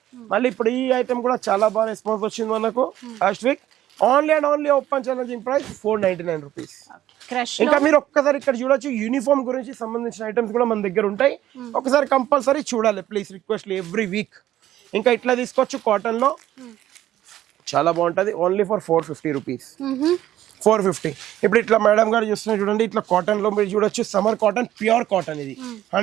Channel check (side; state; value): left; quieter; 13.0 dB